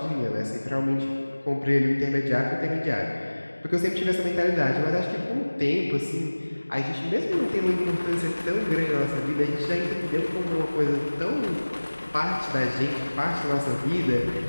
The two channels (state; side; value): inverted; both; correlation -1.00